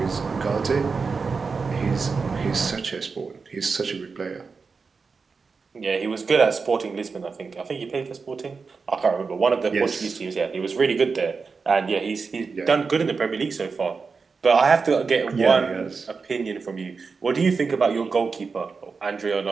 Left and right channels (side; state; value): left; quieter; 4.9 dB